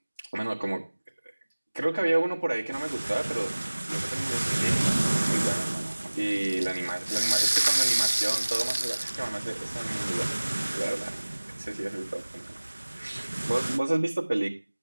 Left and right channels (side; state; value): both; inverted; correlation -1.00